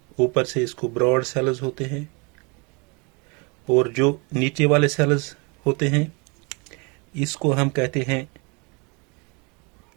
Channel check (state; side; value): quieter; left; 30.7 dB